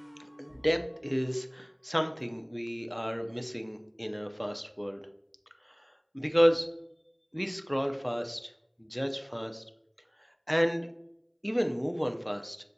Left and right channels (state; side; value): identical; both; correlation 1.00